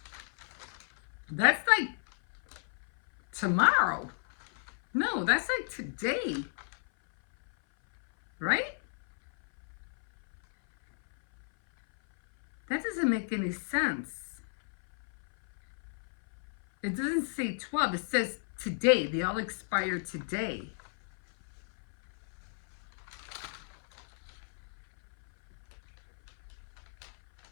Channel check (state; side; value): silent; right; 56 dB below the other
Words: That's like tomorrow. No, that's like today. Right? That doesn't make any sense. It doesn't say 12. It says today. They all expire today.